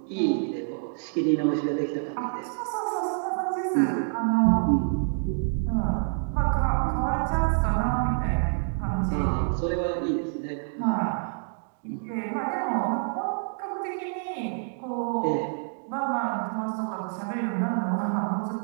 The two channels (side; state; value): left; silent; 60 dB below the other